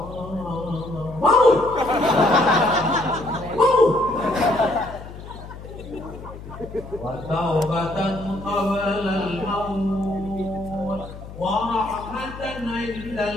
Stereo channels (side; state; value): left; noise; hum, 14 dB below the sound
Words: Wa taubatan qabla al-maut wa rahmatan